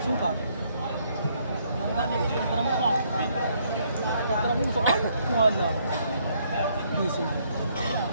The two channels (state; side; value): inverted; both; correlation -0.69